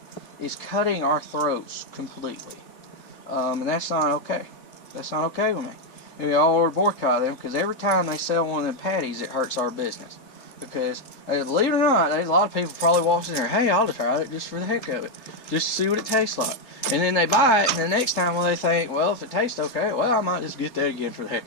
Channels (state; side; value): late; right; 3.8 ms